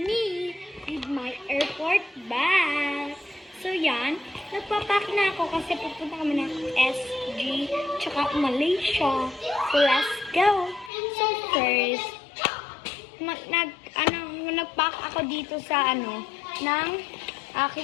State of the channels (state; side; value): drops out; right; at 10.9 s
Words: with my airport bag. So yan, nagpapack na ako kasi pupunta kami ng SG tsaka Malaysia. So let's go. So first, nagpack ako dito sa ng